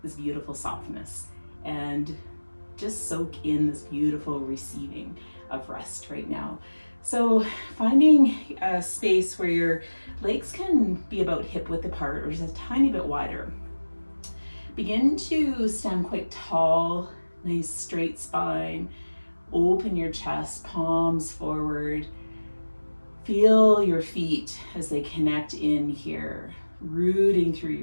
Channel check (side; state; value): both; inverted; correlation -1.00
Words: this beautiful softness and just soak in this beautiful receiving of rest right now. So finding a space where your legs can be about hip width apart or just a tiny bit wider. Begin to stand quite tall, nice straight spine. Open your chest, palms forward. Feel your feet as they connect in here, rooting through